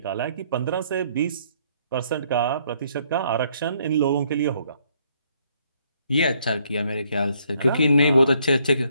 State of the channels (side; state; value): both; inverted; correlation -0.68